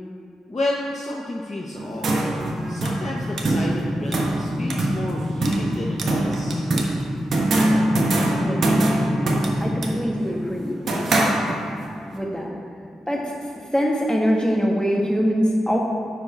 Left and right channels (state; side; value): normal; both; correlation 0.90